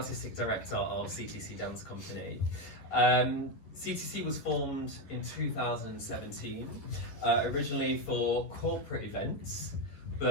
director of CTC Dance Company. CTC was formed in 2017, originally for corporate events,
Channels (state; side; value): late; right; 11 ms